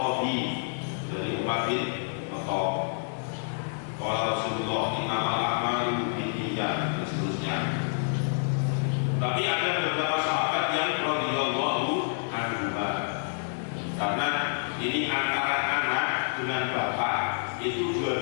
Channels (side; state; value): right; silent; digital silence